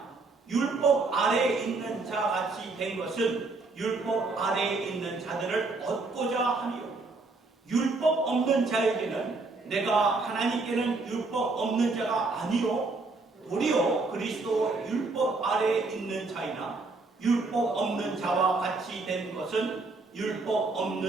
율법 아래에 있는 자 같이 된 것은 율법 아래에 있는 자들을 얻고자 하며 율법 없는 자에게는 내가 하나님께는 율법 없는 자가 아니요 도리어 그리스도 율법 아래에 있는 자이나 율법 없는 자와 같이 된 것은 율법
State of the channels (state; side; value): quieter; left; 3.6 dB